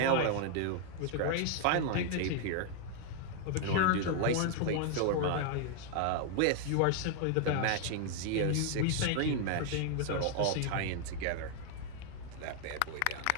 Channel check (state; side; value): different; both; correlation 0.00